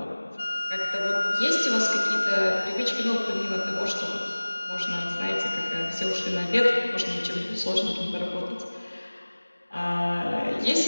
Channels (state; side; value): inverted; both; correlation -1.00